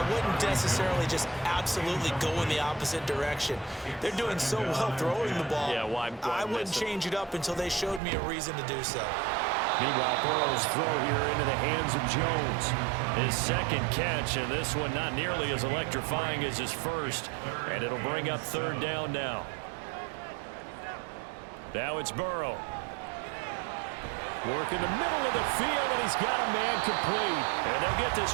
wouldn't necessarily just absolutely go in the opposite direction. They're doing so well throwing the ball. Yeah, why I wouldn't change it up until they showed me a reason to do so. Meanwhile, Burrow's throw here into the hands of Jones. His 2nd catch, and this one not nearly as electrifying as his first. And it'll bring up 3rd down now. Now it's Burrow. Work in the middle of the field, and he's got a man complete. And they'll get this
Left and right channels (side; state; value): left; drops out; at 8.0 s